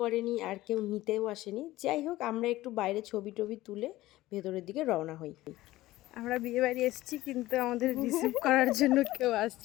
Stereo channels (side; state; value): right; quieter; 16.9 dB